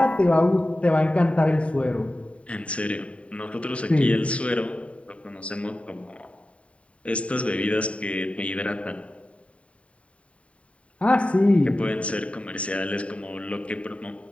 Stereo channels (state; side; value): late; right; 0.063 ms